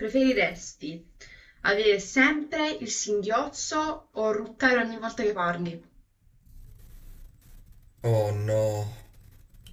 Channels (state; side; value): identical; both; correlation 1.00